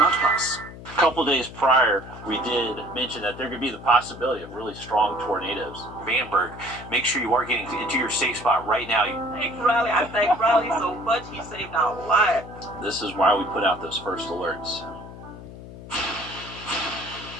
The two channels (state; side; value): noise; left; hum, 14 dB below the sound